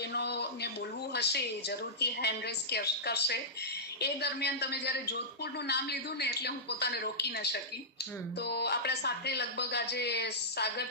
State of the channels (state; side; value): normal; both; correlation -0.15